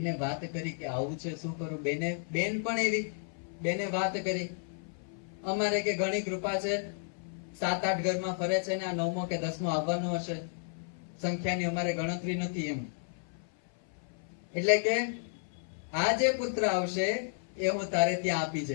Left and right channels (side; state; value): right; silent; 55 dB below the other